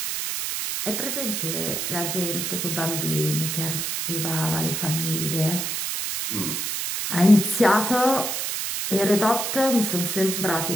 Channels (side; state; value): right; noise; hiss, 2 dB below the sound